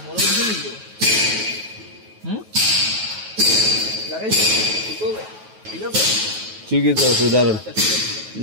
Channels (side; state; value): left; late; 9.3 ms